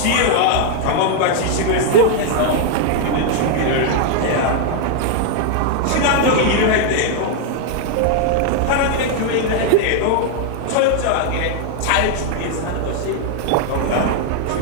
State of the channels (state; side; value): different; both; correlation 0.00